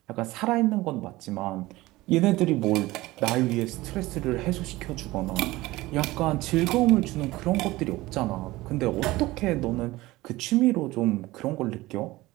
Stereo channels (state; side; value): quieter; left; 19.0 dB